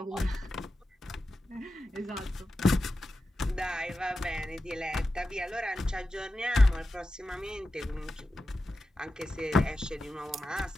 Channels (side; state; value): both; normal; correlation 0.92